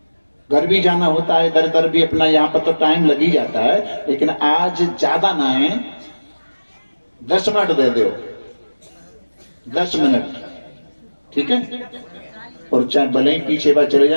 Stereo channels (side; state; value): both; inverted; correlation -1.00